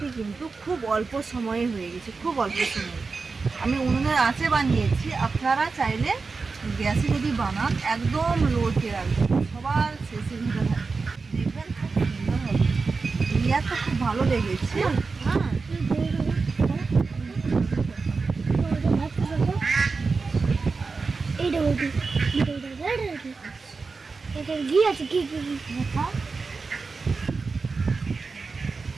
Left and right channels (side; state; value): left; quieter; 4.4 dB